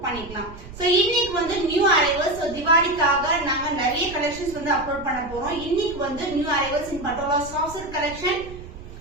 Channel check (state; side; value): noise; right; rumble, 15 dB below the sound